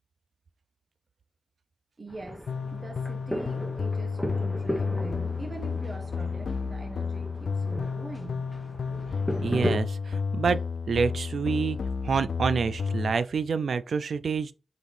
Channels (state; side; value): normal; both; correlation 0.85